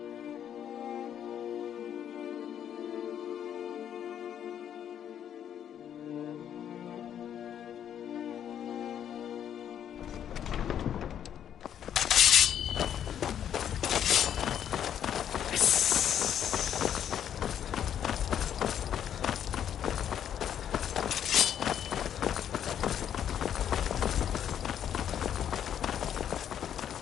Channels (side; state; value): right; quieter; 9.5 dB